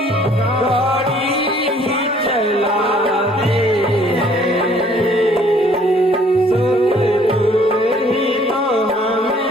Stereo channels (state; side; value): normal; both; correlation 0.59